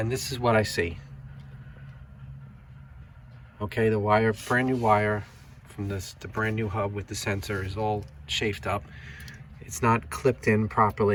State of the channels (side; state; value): both; identical; correlation 1.00